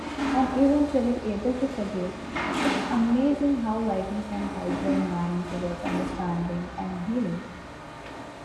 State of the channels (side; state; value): both; identical; correlation 1.00